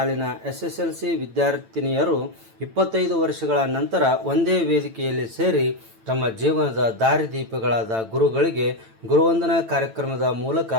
SSLC ವಿದ್ಯಾರ್ಥಿನಿಯರು 25 ವರ್ಷಗಳ ನಂತರ ಒಂದೇ ವೇದಿಕೆಯಲ್ಲಿ ಸೇರಿ ತಮ್ಮ ಜೀವನದ ದಾರಿದೀಪಗಳಾದ ಗುರುಗಳಿಗೆ ಗುರುವಂದನಾ ಕಾರ್ಯಕ್ರಮದ ಮೂಲಕ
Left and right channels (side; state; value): left; late; 9.0 ms